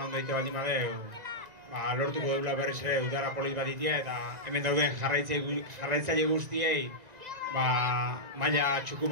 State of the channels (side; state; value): left; late; 1.9 ms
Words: egite baldin badeu, lortuko deula berriz ere udara polit batitia eta hemen dauden jarraitzaile guztiei maila txuku